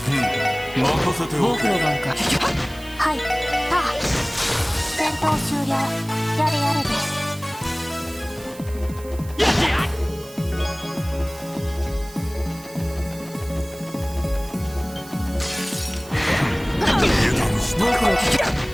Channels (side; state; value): right; noise; hiss, 19 dB below the sound